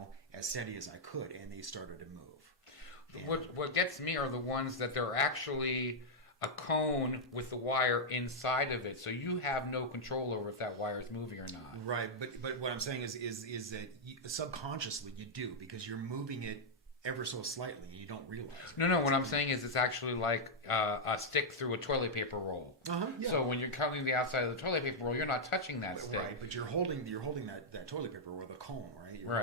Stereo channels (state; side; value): normal; both; correlation -0.04